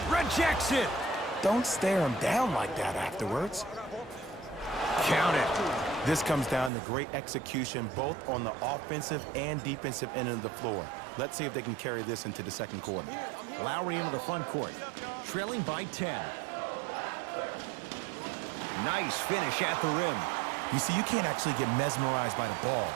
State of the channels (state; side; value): drops out; left; at 6.7 s